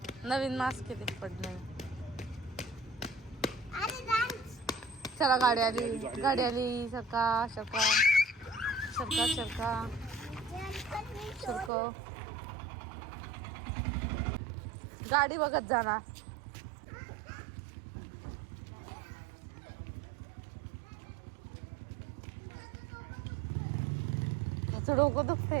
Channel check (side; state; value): left; drops out; at 11.7 s